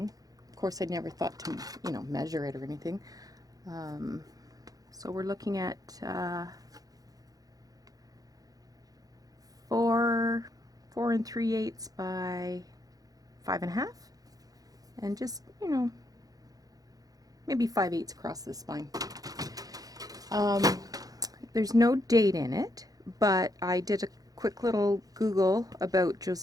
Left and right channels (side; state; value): left; late; 0.18 ms